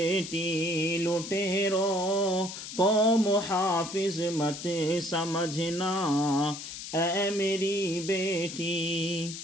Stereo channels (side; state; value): left; noise; hiss, 10 dB below the sound